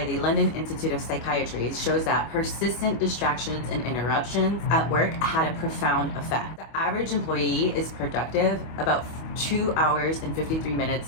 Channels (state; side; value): late; right; 25 ms